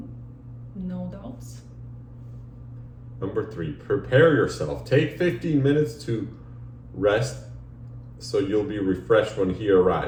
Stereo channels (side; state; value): both; identical; correlation 1.00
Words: no doubts. Number three, prepare yourself. Take 15 minutes to rest so you'll be refreshed when he